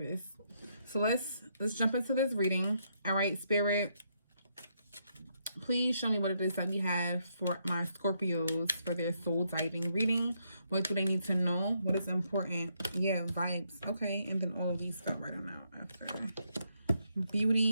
So let's jump into this reading. All right, Spirit, please show me what it is that we have for my Scorpios for their soul diving reading. What do they need to know? What is important? Yeah, vibes. Okay, and then all of these stuff right on out after.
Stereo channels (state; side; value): inverted; both; correlation -0.76